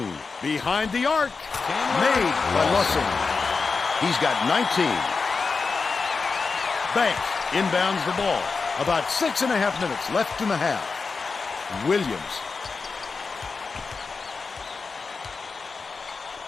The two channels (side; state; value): right; quieter; 4.6 dB